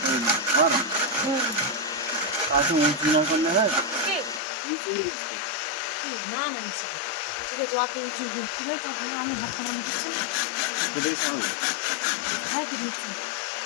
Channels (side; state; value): right; drops out; at 4.4 s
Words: না না নিচে ঠিক আছে, অত উঁচু কি ভাই কথা আমি হাত পাকানো দিচ্ছি না। হ্যাঁ কি দিচ্ছি।